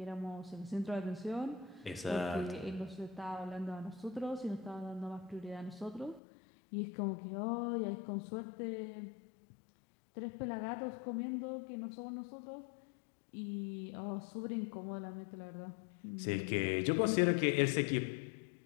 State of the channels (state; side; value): drops out; right; at 6.2 s